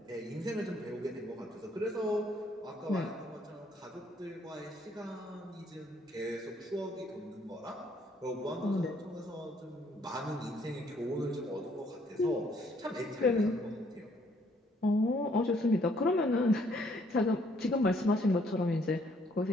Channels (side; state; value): both; normal; correlation 0.67